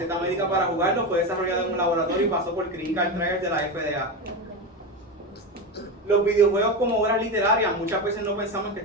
médica para jugarlo, fue desarrollado en un laboratorio y pasó por Clinical Trials de la FDA. Los videojuegos como obras literarias, muchas veces no pensamos que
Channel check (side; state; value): both; normal; correlation 0.18